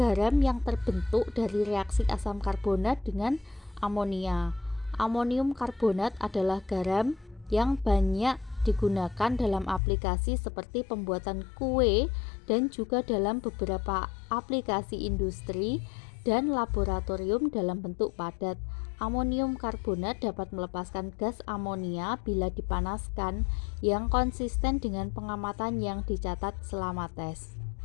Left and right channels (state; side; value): drops out; right; at 9.8 s